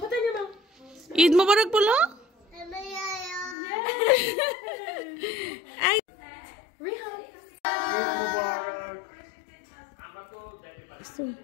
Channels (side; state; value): right; drops out; at 3.6 s